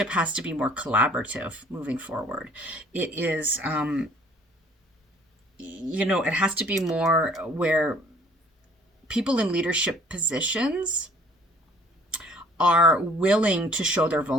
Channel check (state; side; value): normal; both; correlation 0.55